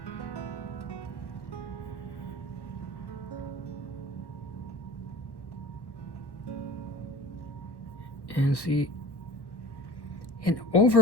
And see, and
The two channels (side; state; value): right; late; 1.1 ms